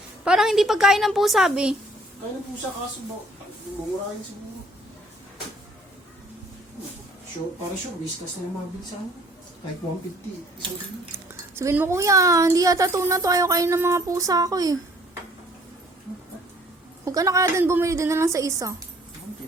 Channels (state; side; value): normal; both; correlation 0.58